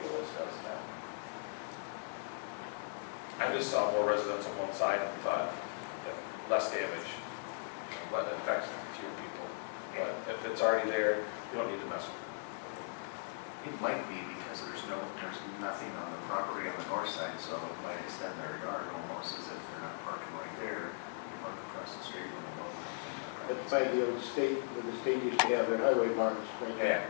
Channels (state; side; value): silent; right; digital silence